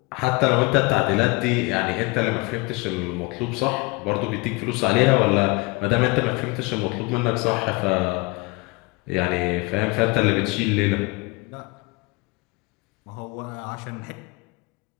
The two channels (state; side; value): quieter; right; 26.2 dB